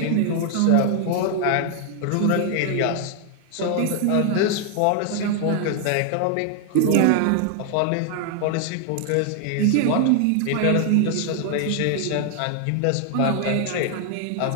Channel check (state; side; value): different; both; correlation 0.00